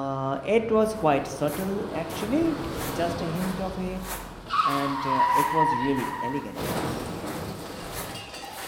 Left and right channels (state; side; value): identical; both; correlation 1.00